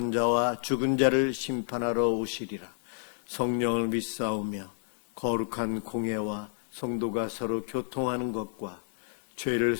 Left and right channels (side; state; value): right; silent; digital silence